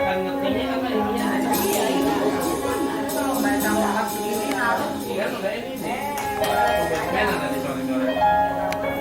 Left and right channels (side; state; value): both; identical; correlation 1.00